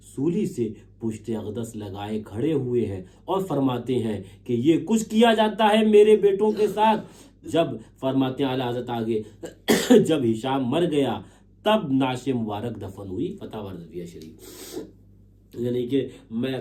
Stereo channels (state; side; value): identical; both; correlation 1.00